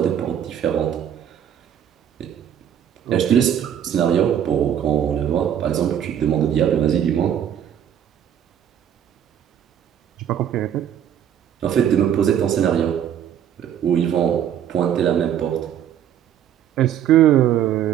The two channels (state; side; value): quieter; left; 9.7 dB